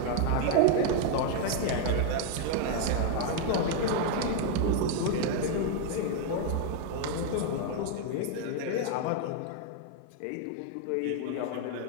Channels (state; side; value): different; both; correlation 0.00